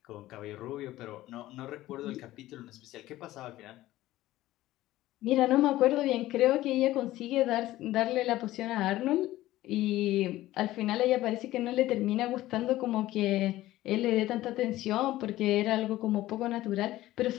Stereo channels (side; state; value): right; quieter; 15.9 dB